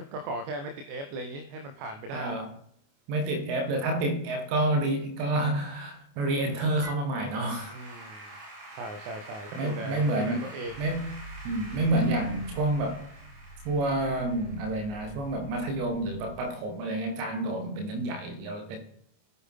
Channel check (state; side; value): late; left; 28 ms